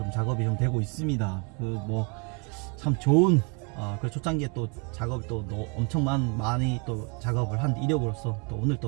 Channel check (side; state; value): left; quieter; 34.2 dB